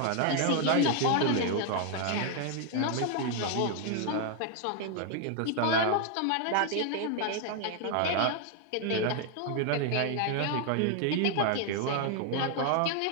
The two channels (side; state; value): both; different; correlation 0.00